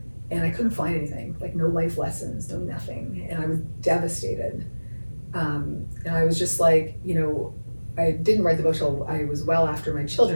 And I couldn't find anything, like no life lessons, no nothing. And I was devastated. And I was just like, you know, I didn't write the book till I was well after my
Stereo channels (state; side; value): inverted; both; correlation -1.00